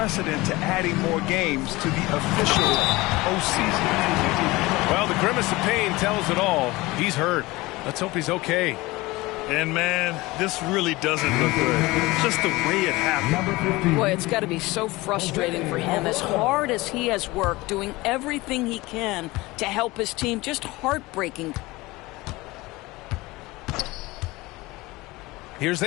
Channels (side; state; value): right; quieter; 21.0 dB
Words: to adding more games to the official postseason. Well, the grimace of pain tells it all. He's hurt. Let's hope he's okay. And, man, this really doesn't look good. Just the way it happened. Boy, it's got to be so frustrating for him. As hard as he has worked, doing everything he can to help his team, just heartbreaking. Here's